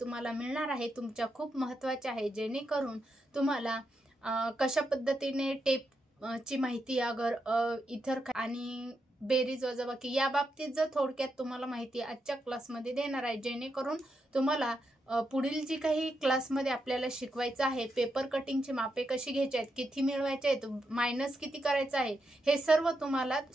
तुम्हाला मिळणार आहे तुमच्या खूप महत्त्वाची आहे, जेणेकरून तुम्हाला कशा पद्धतीने टेपची माहिती अगर इतर आणि बेरीज वजाबाकी या बाबतीत जर थोडक्यात तुम्हाला माहिती आजच्या क्लासमध्ये देणार आहे, जेणेकरून तुम्हाला पुढील जी काही क्लासमध्ये आपल्याला शिकवायचं आहे, पेपर कटिंगची मापे कशी घ्यायची आहेत, किती मिळवायचे आहेत, मायनस किती करायचं आहे, हे सर्व तुम्हाला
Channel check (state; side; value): normal; both; correlation 0.84